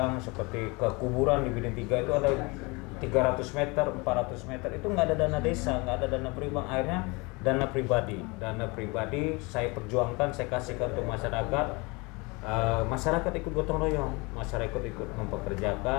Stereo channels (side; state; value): right; quieter; 27.1 dB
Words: seperti ke kuburan di Bidin 3 itu ada 300 meter, 400 meter itu nggak ada dana desa, nggak ada dana pribadi, akhirnya dana pribadi saya perjuangkan, saya kasihkan untuk masyarakat. Masyarakat ikut gotong royong, masyarakat ikut